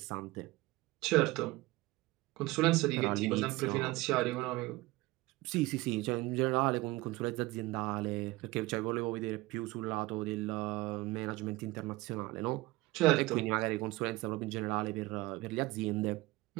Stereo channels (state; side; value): quieter; left; 20.5 dB